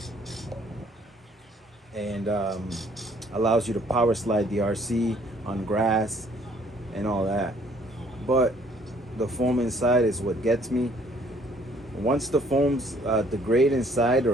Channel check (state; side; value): normal; both; correlation 0.61